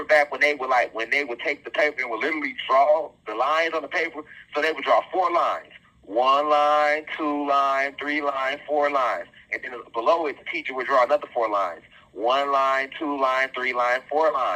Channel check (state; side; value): identical; both; correlation 1.00